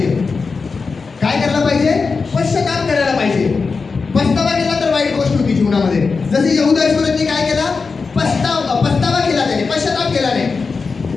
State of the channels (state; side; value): quieter; right; 4.6 dB